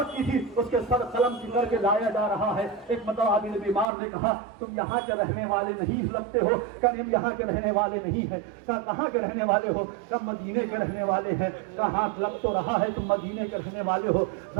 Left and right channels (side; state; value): left; drops out; at 3.9 s